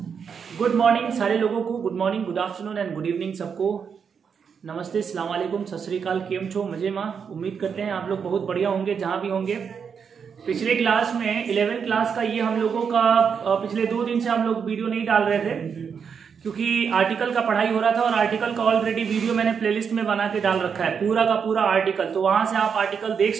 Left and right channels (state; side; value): quieter; left; 6.6 dB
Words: morning सारे लोगों को, good morning, good afternoon and good evening सबको। नमस्ते, अस्सलाम वालेकुम, सत श्री अकाल, केम छो, मजे माँ। उम्मीद करते हैं आप लोग बहुत बढ़िया होंगे जहाँ भी होंगे। पिछले क्लास में 11th क्लास का ये हम लोगों का पिछले 2 दिन से हम लोग वीडियो नहीं डाल रहे थे क्योंकि आर्टिकल का पढ़ाई हो रहा था और आर्टिकल का ऑलरेडी वीडियो मैंने प्लेलिस्ट में बना के डाल रखा है, पूरा का पूरा आर्टिकल। तो वहाँ से आप आर्टिकल देख